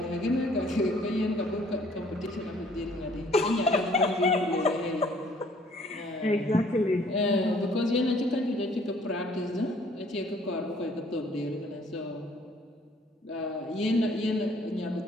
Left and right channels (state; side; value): normal; both; correlation 0.59